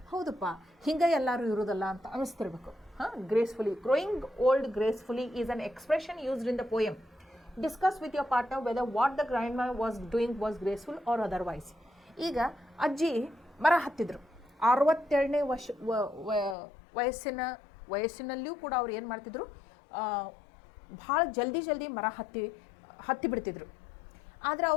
ಹೌದಪ್ಪ ಹಿಂಗೆ ಎಲ್ಲರೂ ಇರೋದಲ್ಲ ಅಂತ ಅನಿಸ್ತಿರ್ಬೇಕು. Gracefully. Growing old gracefully is an expression used in the poem. Discuss with your partner whether what the grandma was doing was graceful or otherwise. ಈಗ ಅಜ್ಜಿ ಮರ ಹತ್ತಿದ್ರು. 67ನೇ ವಯಸ್ಸಿನಲ್ಲಿಯೂ ಕೂಡ ಅವ್ರು ಏನು ಮಾಡ್ತಿದ್ರು, ಭಾಳ ಜಲ್ದಿ ಮರ ಹತ್ತಿ ಬಿಡ್ತಿದ್ರು. ಆದರೆ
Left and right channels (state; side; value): drops out; right; at 16.6 s